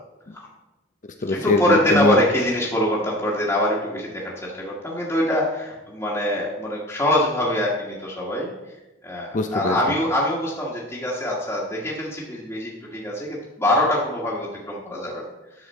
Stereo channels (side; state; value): both; normal; correlation 0.37